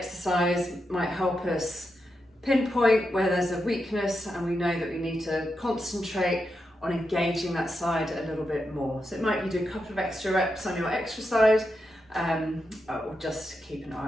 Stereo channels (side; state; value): both; normal; correlation 0.86